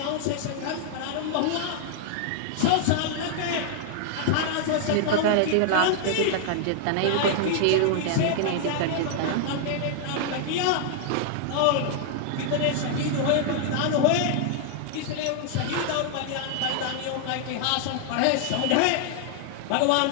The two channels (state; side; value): different; both; correlation 0.00